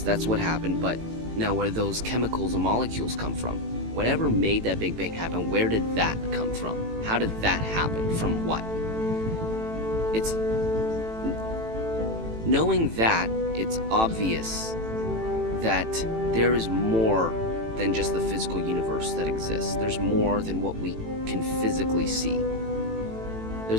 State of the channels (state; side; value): late; left; 18 ms